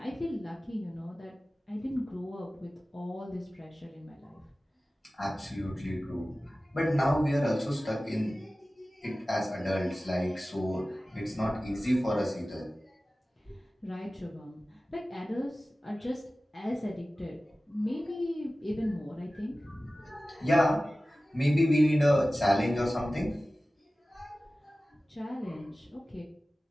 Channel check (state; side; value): normal; both; correlation 0.96